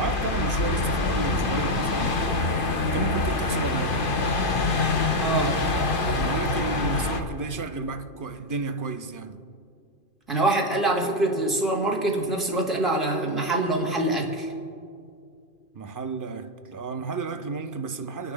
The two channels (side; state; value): right; late; 2.5 ms